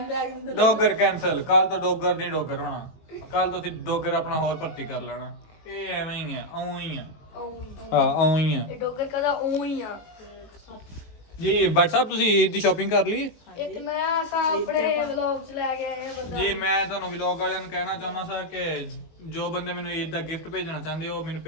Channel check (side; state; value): right; late; 19 ms